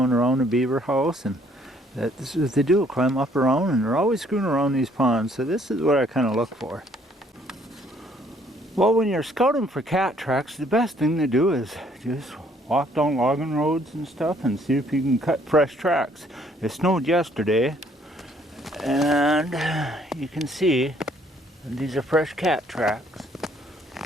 around the beaver house, and that's what they do, climb up around, and they're always screwing around these ponds. So this is what I kind of look for. Well, when you're scouting for cat tracks, the best thing to do is just walk down logging roads and stuff and see if you can cut fresh tracks. It snowed yesterday, and you can see these are fresh cat tracks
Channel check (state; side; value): normal; both; correlation 0.64